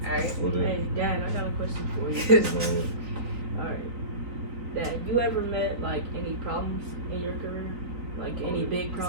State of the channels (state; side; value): late; left; 3.9 ms